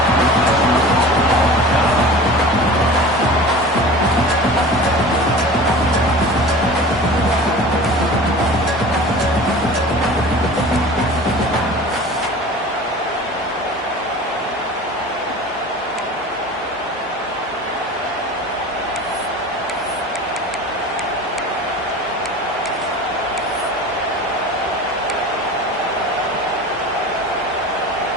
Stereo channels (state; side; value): normal; both; correlation 0.38